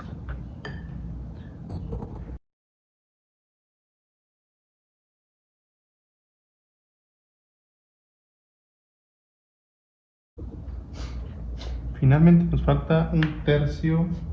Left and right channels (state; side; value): identical; both; correlation 1.00